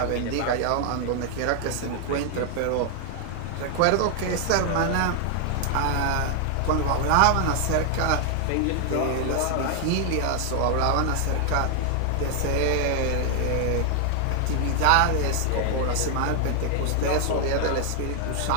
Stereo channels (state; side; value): different; both; correlation 0.00